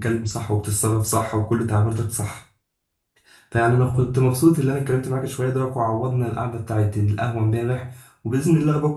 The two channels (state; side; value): identical; both; correlation 1.00